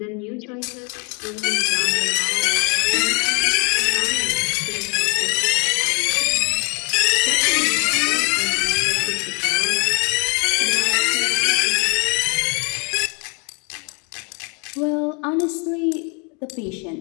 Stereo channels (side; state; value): right; quieter; 32.6 dB